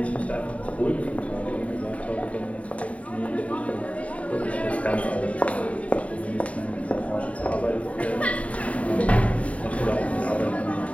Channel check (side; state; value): right; late; 0.066 ms